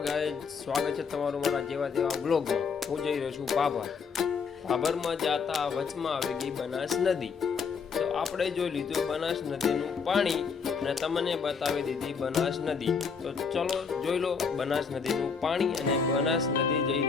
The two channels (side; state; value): right; quieter; 5.7 dB